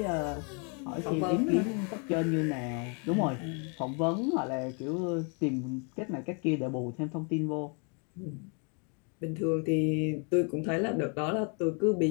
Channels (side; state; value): right; quieter; 37.1 dB